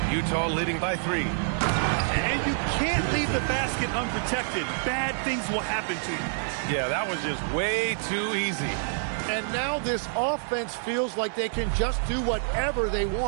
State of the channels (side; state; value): left; silent; 60 dB below the other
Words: Utah leading by 3. And you can't leave the basket unprotected. Bad things will happen to you. Yeah, that was just way too easy. And now this offense feels like they can just do whatever they